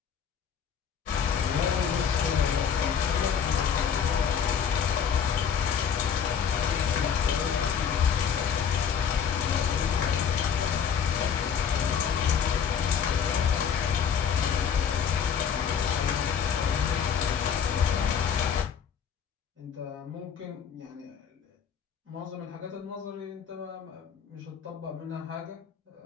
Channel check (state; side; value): quieter; right; 7.5 dB